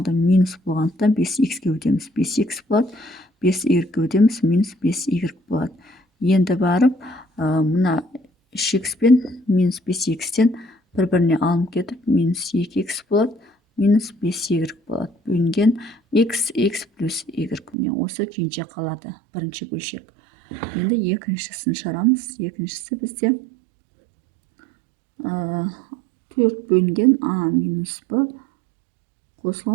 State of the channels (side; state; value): left; drops out; at 17.8 s